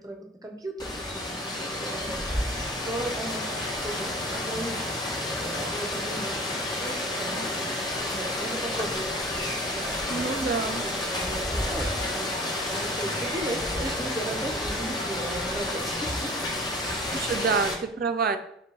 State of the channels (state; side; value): normal; both; correlation 0.40